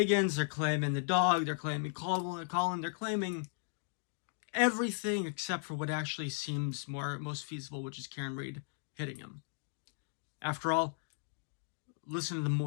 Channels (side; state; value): right; silent; digital silence